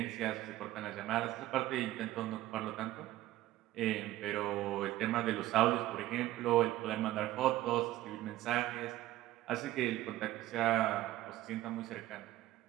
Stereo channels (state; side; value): quieter; left; 15.5 dB